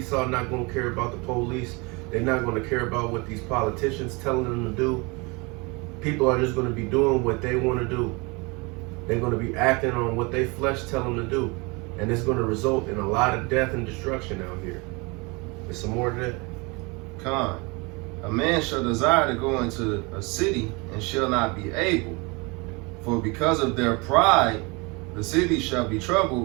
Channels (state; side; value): quieter; left; 27.8 dB